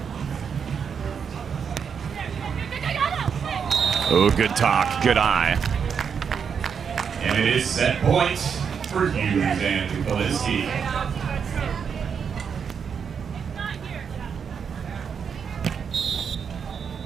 Oh, good talk, good eye. And it is set point for Hughes and Kolinske.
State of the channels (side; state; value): left; quieter; 6.8 dB